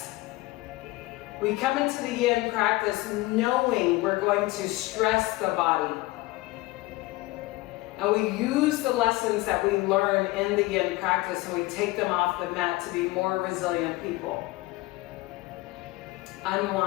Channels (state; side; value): quieter; right; 20.2 dB